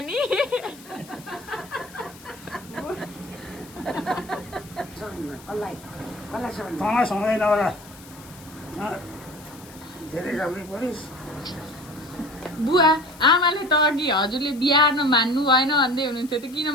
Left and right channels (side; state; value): left; noise; hiss, 21 dB below the sound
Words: बुवा आमाले त अघि हजुरले बिहा हार्न मान्नु भएन भन्दै हुनुहुन्थ्यो त किन